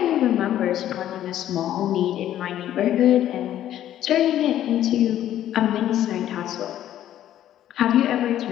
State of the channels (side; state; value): right; quieter; 11.9 dB